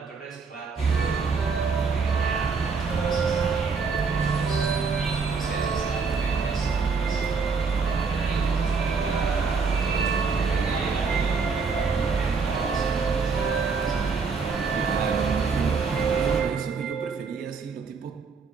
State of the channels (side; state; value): left; quieter; 5.0 dB